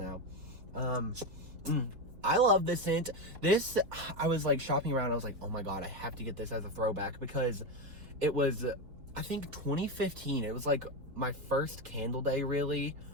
I love this scent. This, I was, like, shopping around. I was like, oh my god, I have to get this as a throwback, because it was, I think, 2015. It was, like, my first candle day, really.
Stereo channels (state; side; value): late; left; 4.0 ms